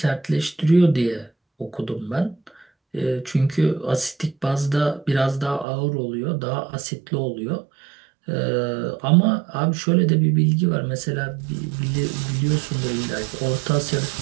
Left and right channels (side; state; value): left; drops out; at 5.7 s